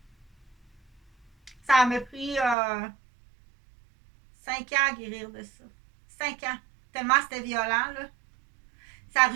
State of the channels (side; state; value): left; drops out; at 2.6 s